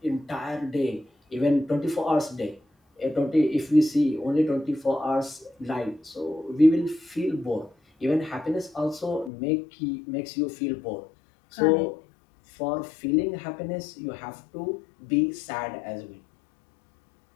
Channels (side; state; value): right; drops out; at 9.3 s